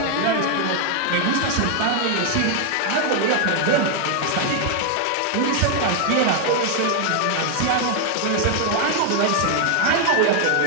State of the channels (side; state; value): both; different; correlation 0.00